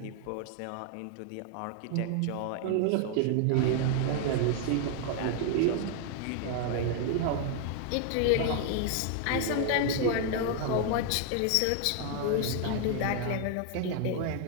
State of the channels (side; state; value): both; different; correlation 0.00